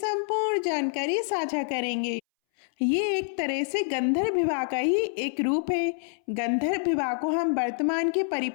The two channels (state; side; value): silent; right; 60 dB below the other